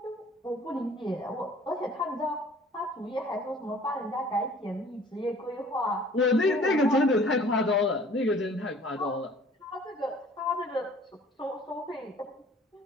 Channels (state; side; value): normal; both; correlation 0.52